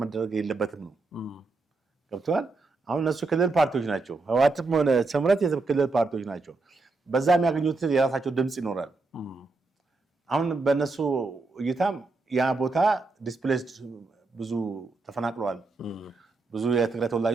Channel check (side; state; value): left; quieter; 3.7 dB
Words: መደረግ የለበትም ነው። ገብቷል። አሁን እነሱ ክልል ፓርቲዎች ናቸው። ህወሓትም ሆነ ስምረት የክልል ፓርቲዎች ናቸው። በዛ የሚያገኙት የራሳቸው ድምፅ ይኖራል። አሁን በእነሱ እይታም ያ ቦታ ዲስፕሌስድ ብዙ ተፈናቅለዋል። ብዙ የትግራይ